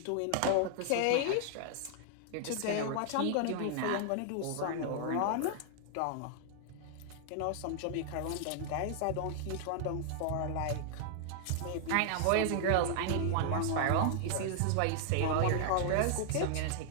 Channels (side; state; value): both; different; correlation 0.00